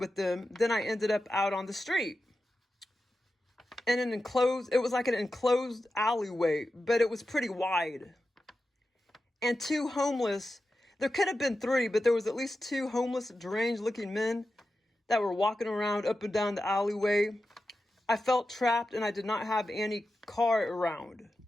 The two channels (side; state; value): both; normal; correlation 0.92